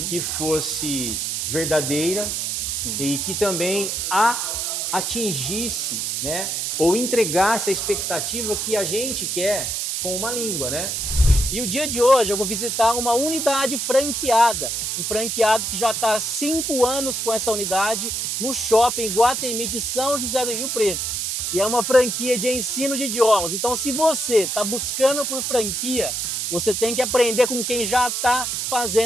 que fosse verdadeira, Sim. e que também atingisse, né, ou entregasse a expectativa que a gente quer com uma língua, né? E o dia de hoje eu vou visitar uma unidade franqueada, um franqueado que já está há 5 anos com essa unidade no shopping Iguatemi de São José do Rio Preto. E é uma franquia de ensino de idiomas. Então, se você está buscando por franquia, você tem que aprender com quem já está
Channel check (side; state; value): right; noise; hiss, 1 dB below the sound